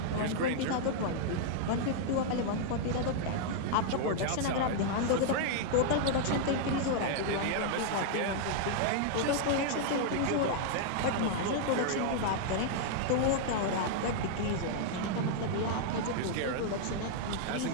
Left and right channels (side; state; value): both; different; correlation -0.01